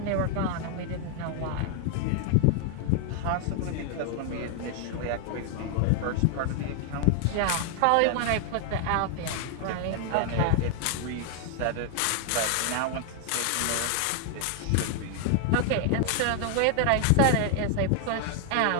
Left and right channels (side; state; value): both; different; correlation 0.00